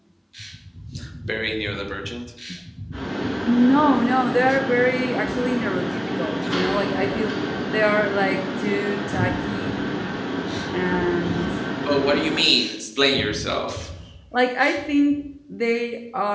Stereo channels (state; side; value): identical; both; correlation 1.00